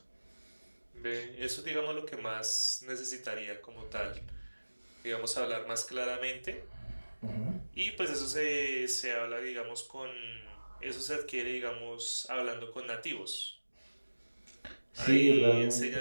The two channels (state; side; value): inverted; both; correlation -1.00